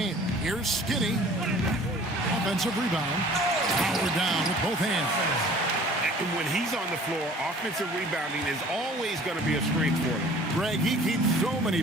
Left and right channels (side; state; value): both; normal; correlation 0.49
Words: Here's Skinny. Offensive rebound. Power down with both hands. And when he's on the floor, offensive rebounding is always going to be a strength for him. Greg, he keeps so many